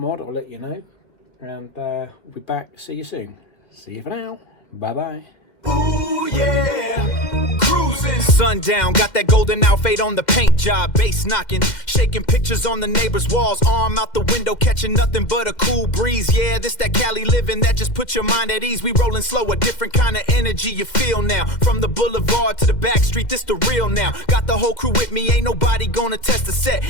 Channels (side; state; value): right; late; 2.1 ms